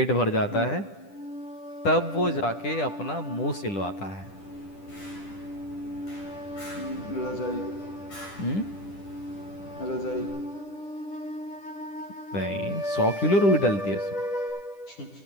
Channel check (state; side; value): late; right; 10 ms